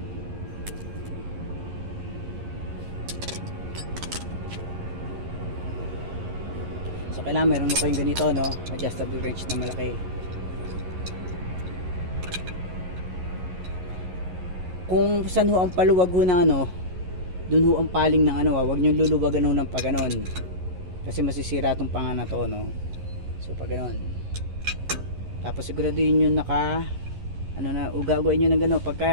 So kailangan meron mo kayong ganito, no? Adjustable wrench na malaki. Kung saan ho ang paluwag ho ng ano, dun ho ang paling ng ano, wag nyo luluwagan ho ng paganon kasi masisira itong panga na to, no? So pag ganon, tapos siguraduhin nyo naka ano na, uga-ugain nyo ng gano'n.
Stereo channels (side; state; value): left; late; 11 ms